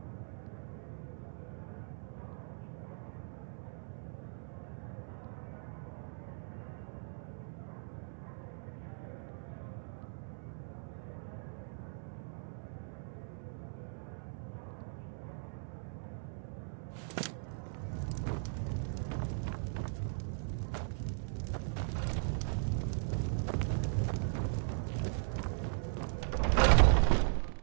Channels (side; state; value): left; silent; 52 dB below the other